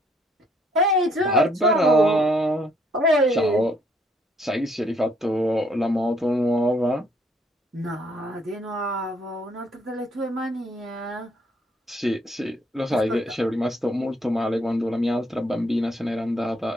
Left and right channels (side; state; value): both; normal; correlation 0.67